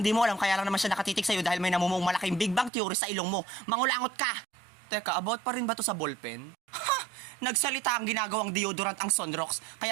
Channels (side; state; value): left; drops out; at 2.7 s